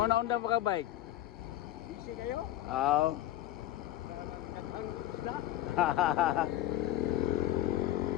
pa ka bike? Busy kayo? Oo.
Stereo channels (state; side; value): quieter; right; 13.3 dB